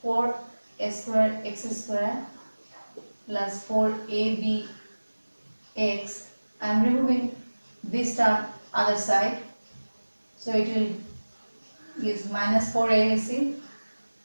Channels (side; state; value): both; inverted; correlation -1.00